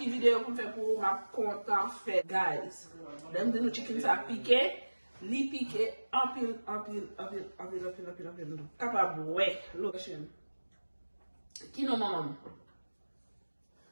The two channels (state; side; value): inverted; both; correlation -1.00